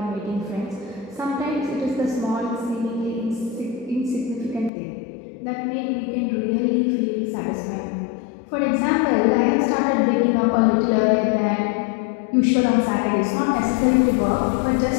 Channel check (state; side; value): drops out; right; at 4.7 s